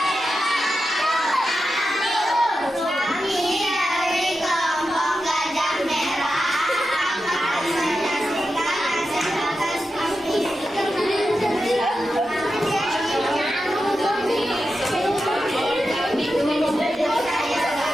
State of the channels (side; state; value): both; normal; correlation 0.90